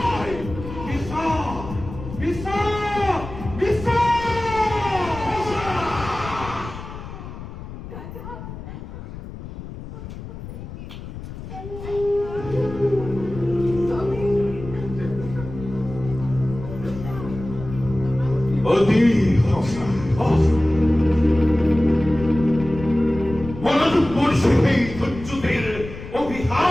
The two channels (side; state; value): left; noise; rumble, 11 dB below the sound